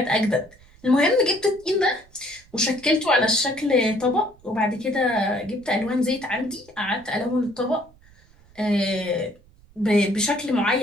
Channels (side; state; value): right; noise; rumble, 27 dB below the sound